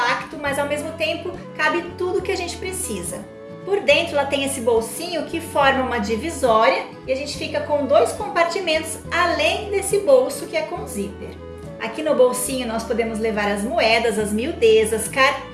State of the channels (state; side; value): identical; both; correlation 1.00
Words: mas ao mesmo tempo cabe tudo que a gente precisa. Por dentro ela tem esse bolsinho que forma uma divisória e a gente fica com dois compartimentos além desse bolso que é com zíper. Aqui no bolsinho nós podemos levar as moedas, as miudezas,